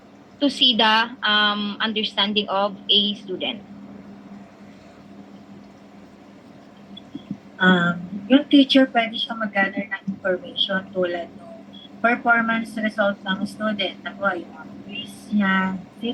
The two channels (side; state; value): both; identical; correlation 1.00